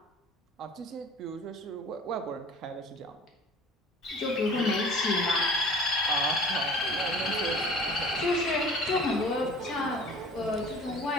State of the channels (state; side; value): normal; both; correlation 0.44